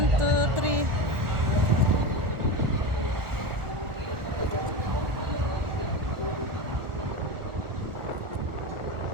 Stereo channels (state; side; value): late; left; 1.4 ms